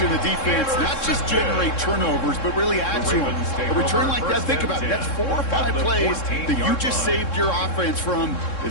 the defense not just generate turnovers, but really add to them. A return like that, think about it. That's 4 or 5 plays that you just saved your offense from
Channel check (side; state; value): right; late; 3.7 ms